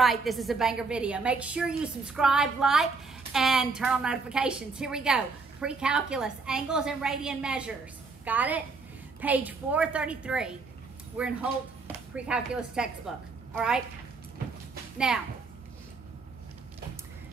this is a banger video. Make sure you subscribe, like, and turn on notifications. Here we go. Precalculus, angles and radian measures. Got it? Page 433. We're in Holt Precalculus textbook. All right? Now,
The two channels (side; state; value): left; quieter; 4.3 dB